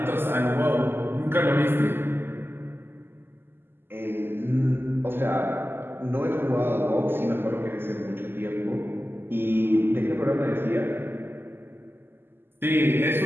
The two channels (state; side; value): late; left; 0.11 ms